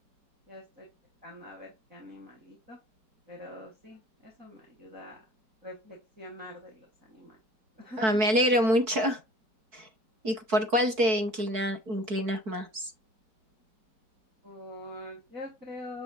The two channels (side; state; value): left; late; 4.6 ms